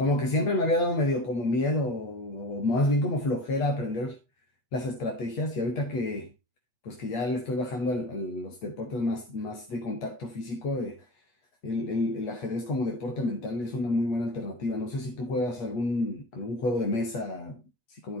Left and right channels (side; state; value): right; late; 8.2 ms